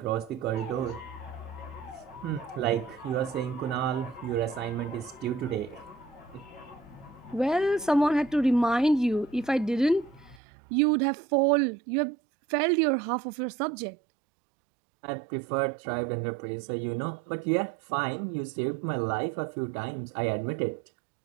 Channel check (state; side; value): drops out; left; at 10.4 s